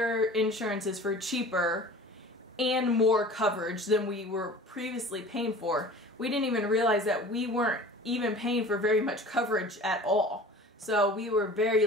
insurances for cheaper and more coverage than we were previously paying for. We didn't even realize that we weren't even paying for very much coverage at all. So we were very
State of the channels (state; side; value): normal; both; correlation 0.42